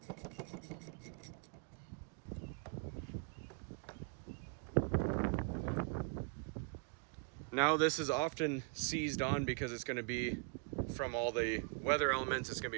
Now this is often seized on because it's going to be from all the weather elements, it's going to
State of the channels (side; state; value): left; quieter; 33.0 dB